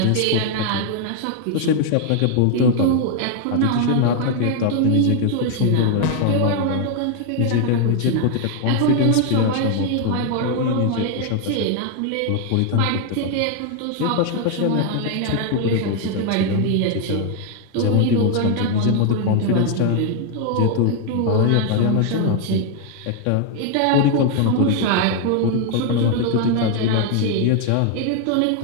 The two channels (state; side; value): different; both; correlation 0.00